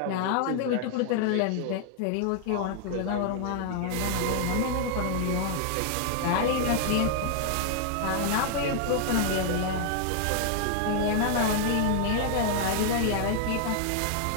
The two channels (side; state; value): both; different; correlation 0.00